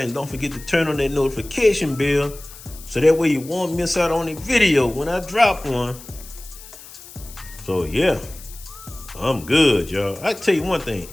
don't forget to turn on that notification bell, so that way you won't miss out on a video when I drop one. So yeah, I'm good, y'all. I tell you one thing,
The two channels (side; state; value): left; noise; hiss, 17 dB below the sound